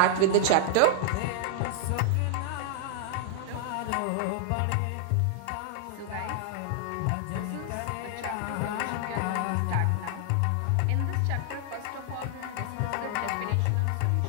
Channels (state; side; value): different; both; correlation -0.01